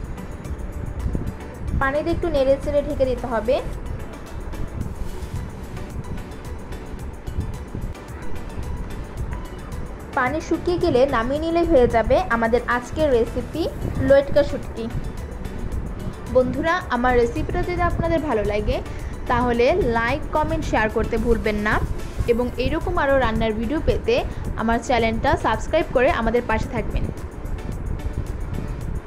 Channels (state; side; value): identical; both; correlation 1.00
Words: পানি দিয়ে একটু নেড়ে চেড়ে ঢেকে দিতে হবে। পানি শুকিয়ে গেলে নামিয়ে নিলে হয়ে যাবে আমাদের আজকের রেসিপি লটকা শুটকি। বন্ধুরা, আমার রেসিপিটা যদি আপনাদের ভালো লাগে তাহলে লাইক, কমেন্ট, শেয়ার করতে ভুলবেন না এবং এইরকম আরও রান্নার ভিডিও পেতে আমার চ্যানেলটা সাবস্ক্রাইব করে আমাদের পাশে থাকবেন।